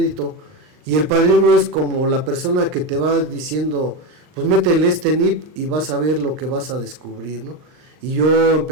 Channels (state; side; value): late; left; 39 ms